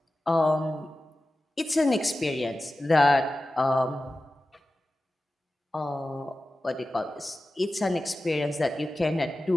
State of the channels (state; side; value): normal; both; correlation 0.94